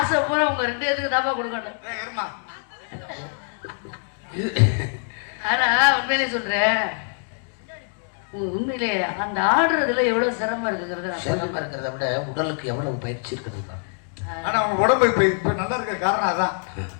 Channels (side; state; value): right; silent; 63 dB below the other